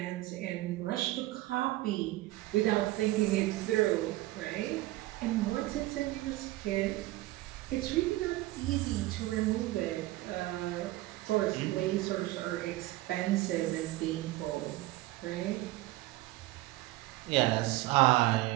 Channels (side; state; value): left; quieter; 18.0 dB